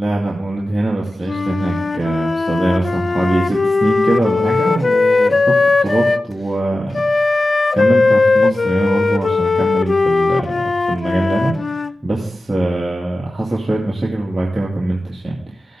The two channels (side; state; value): both; normal; correlation 0.94